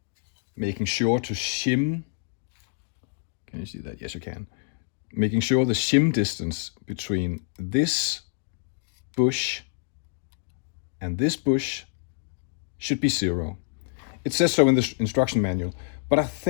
making sure to shim. Can you see that? Yes, you can. Making sure the shim distance between this bush and this bush should be 0. It says so in the instruction manual, but I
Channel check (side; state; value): right; silent; digital silence